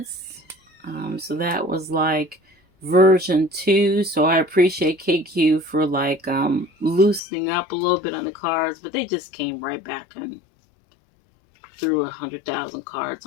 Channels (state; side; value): drops out; right; at 7.2 s